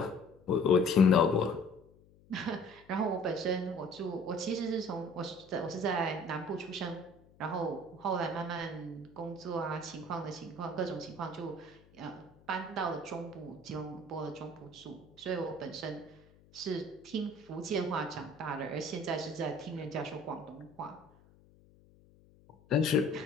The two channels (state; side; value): noise; left; hum, 27 dB below the sound